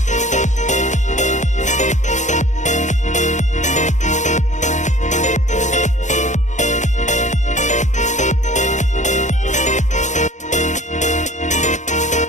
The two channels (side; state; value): right; late; 0.35 ms